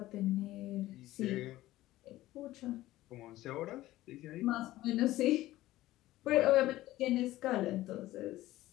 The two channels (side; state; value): right; quieter; 16.1 dB